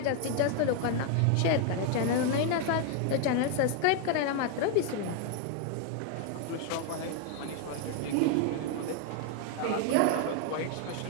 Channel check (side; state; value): both; different; correlation 0.01